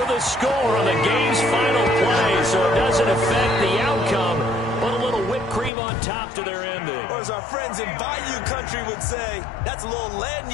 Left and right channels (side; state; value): right; drops out; at 5.7 s